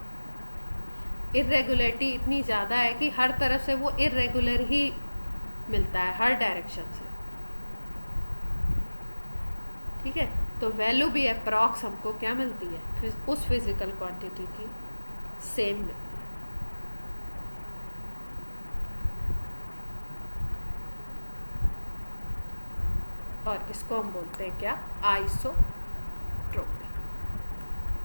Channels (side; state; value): both; inverted; correlation -1.00